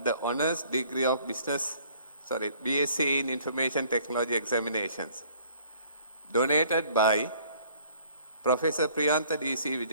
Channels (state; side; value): inverted; both; correlation -0.57